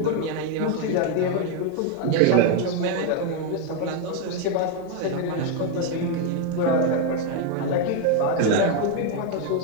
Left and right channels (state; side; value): different; both; correlation 0.01